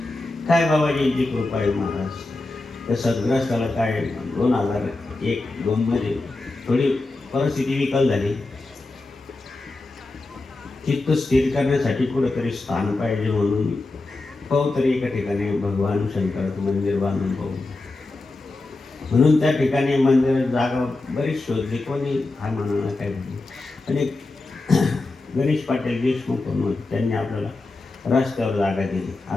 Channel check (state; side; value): quieter; right; 3.2 dB